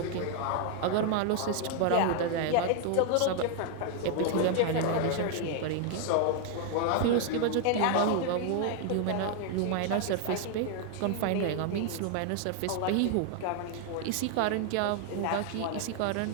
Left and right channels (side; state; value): both; different; correlation 0.00